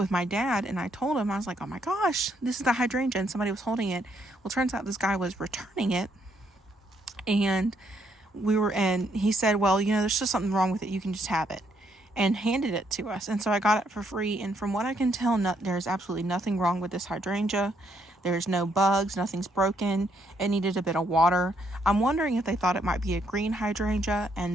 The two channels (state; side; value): normal; both; correlation 0.73